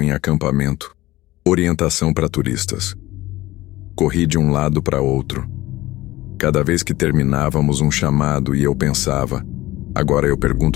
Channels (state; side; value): quieter; right; 17.8 dB